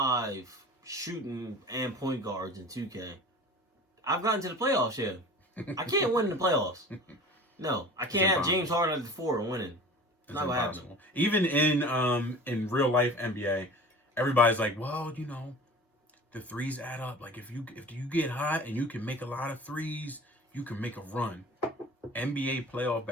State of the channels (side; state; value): both; normal; correlation 0.39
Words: shooting and point guards in 2K. I've gotten to the playoffs. Yeah, I can't win in the playoffs. No, I can't have James Harden at the 4 and winning. It's not gonna happen. Even in real life NBA, everybody's like, well, you know, the threes add up. Like if you get hot and you can make a lot of threes, you can make a run. NBA playoff